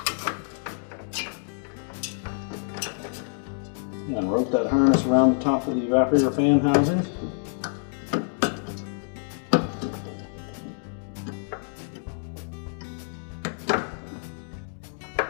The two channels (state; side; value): silent; right; digital silence